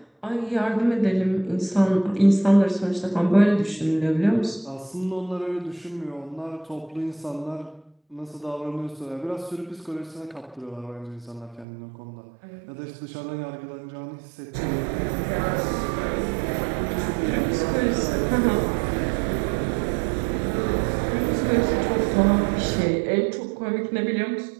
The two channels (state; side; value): drops out; left; at 11.7 s